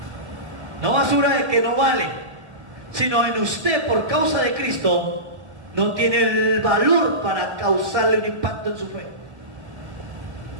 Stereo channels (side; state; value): left; late; 1.9 ms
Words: No basura de que no vale, sino en usted, por causa de Cristo, no tiene el valor para causarle un impacto en su fe.